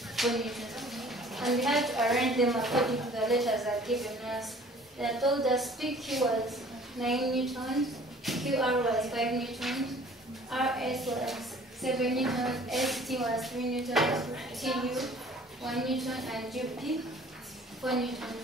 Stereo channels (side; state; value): both; normal; correlation 0.51